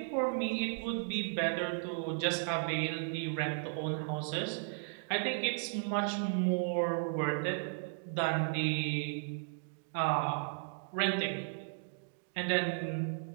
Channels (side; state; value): left; silent; digital silence